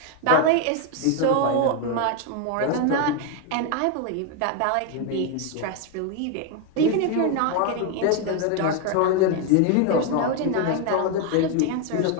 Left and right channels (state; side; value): different; both; correlation 0.01